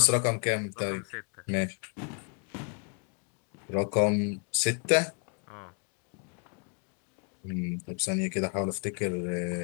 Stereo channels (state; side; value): quieter; right; 39.8 dB